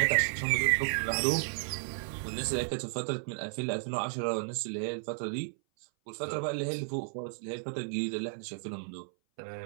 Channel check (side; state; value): left; silent; 56 dB below the other